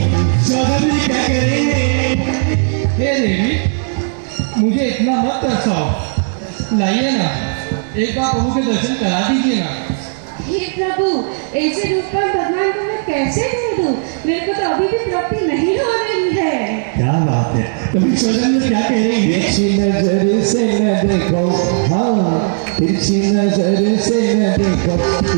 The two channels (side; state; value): left; silent; digital silence